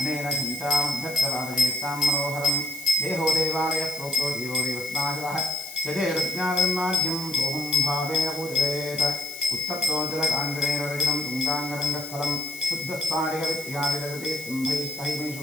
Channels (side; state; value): left; noise; hiss, 13 dB below the sound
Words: चिन्तामभ्यर्थवादयेत्तां मनोहरं देहो देवालयः प्रोक्तो जीवो देवस्नाशः यजेरज्ञानमाद्यं सोऽहं भावेन पूजयेत् उत्तप्तो जलकाङ्गरेण रजनं तुङ्गाङ्गरङ्गस्थलं शुद्धस्फाटिकविद्या विरजते